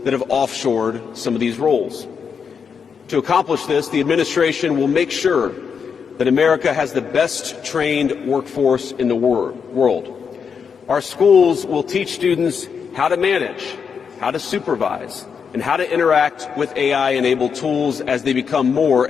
that have offshored some of these roles. To accomplish this, the administration will make sure that America has the best trained workforce in the world. Our schools will teach students how to manage, how to supervise, and how to interact with AI-enabled tools as they become more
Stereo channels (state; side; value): quieter; right; 6.4 dB